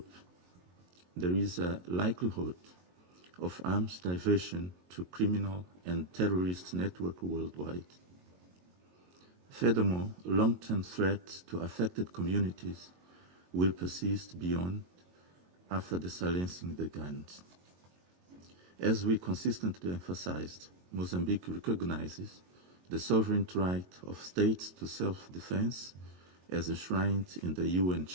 There is a likelihood of arms diversion to criminal and terrorist networks worldwide. Furthermore, long-term threats to affected communities will persist beyond after the silencing the guns. As we consistently emphasized, Mozambique recognizes the sovereign right of states to self-defense as enshrined in the UN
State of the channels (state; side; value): late; left; 22 ms